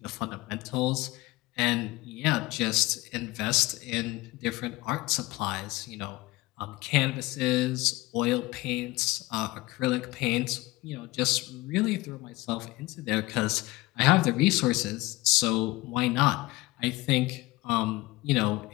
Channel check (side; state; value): right; quieter; 20.5 dB